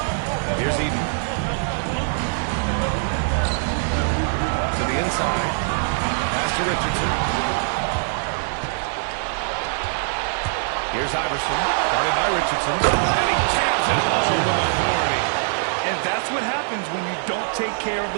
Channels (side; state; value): left; silent; 64 dB below the other